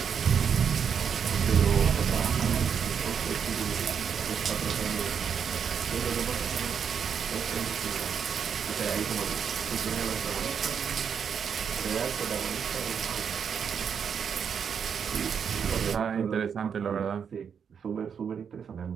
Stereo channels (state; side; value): quieter; left; 7.2 dB